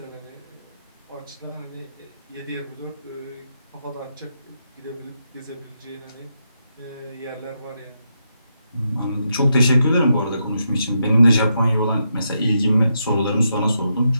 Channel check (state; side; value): inverted; both; correlation -0.82